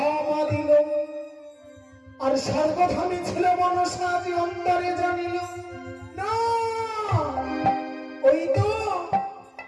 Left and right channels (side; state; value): both; identical; correlation 1.00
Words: দিল, আর সর্বধামী ছিল মনসা যে অন্তরে জানিল না। ওই তো